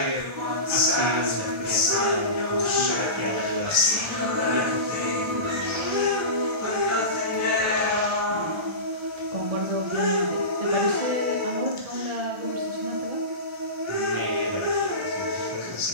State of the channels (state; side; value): late; left; 1.4 ms